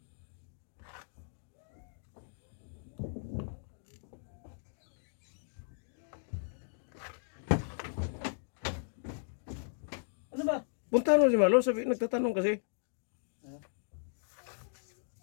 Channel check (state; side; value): silent; right; digital silence